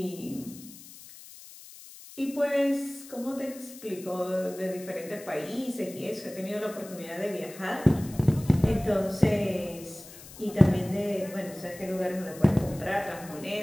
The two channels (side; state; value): left; noise; hiss, 17 dB below the sound